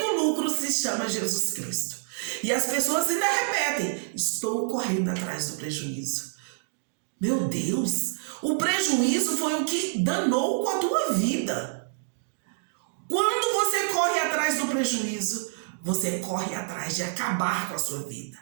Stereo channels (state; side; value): silent; left; digital silence